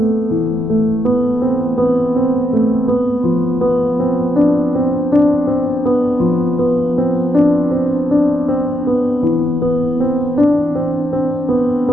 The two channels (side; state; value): both; normal; correlation 0.79